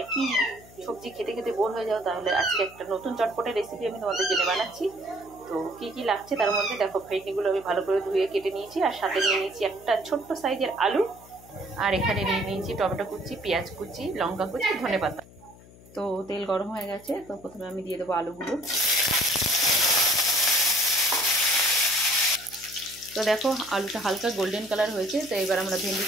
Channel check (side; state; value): left; noise; hum, 22 dB below the sound